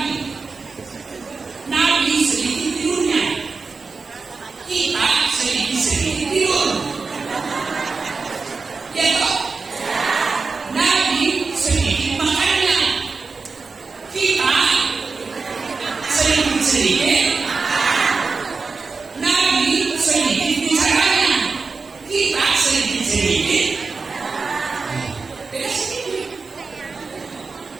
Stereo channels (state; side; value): quieter; left; 4.4 dB